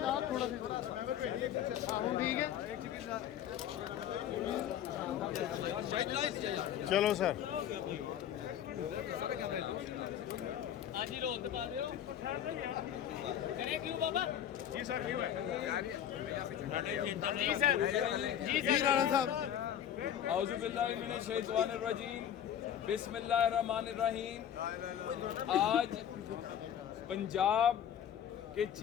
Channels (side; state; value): right; quieter; 10.0 dB